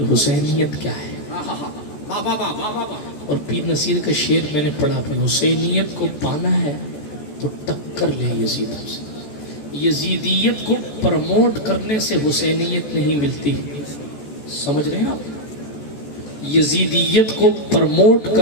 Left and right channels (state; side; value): late; right; 14 ms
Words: حسینیت کیا ہے؟ اور پیر نصیر کا شعر میں نے پڑھا بھی، حسینیت کو پانا ہے تو ٹکر لے یزیدوں سے۔ یزیدیت کو پرموٹ کرنے سے حسینیت نہیں ملتی، سمجھ رہے ہیں آپ؟ یزیدیت کو پرموٹ